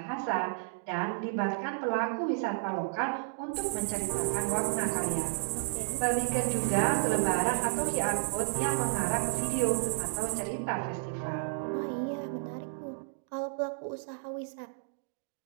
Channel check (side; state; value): left; silent; digital silence